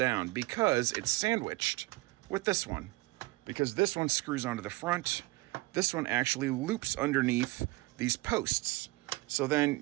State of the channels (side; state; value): left; quieter; 21.5 dB